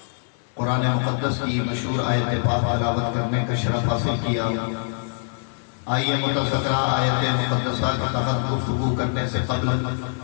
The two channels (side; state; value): right; silent; digital silence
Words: قرآن مقدس کی مشہور آیت پاک تلاوت کرنے کا شرف حاصل کیا۔ آئیے متذکرہ آیت مقدسہ کے تحت گفتگو کرنے سے قبل